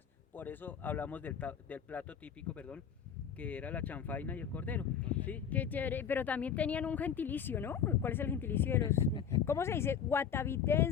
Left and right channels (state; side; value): quieter; right; 7.9 dB